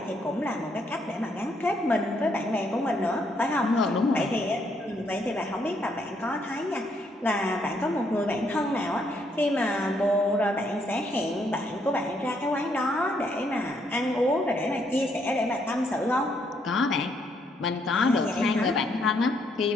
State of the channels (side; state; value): both; normal; correlation 0.72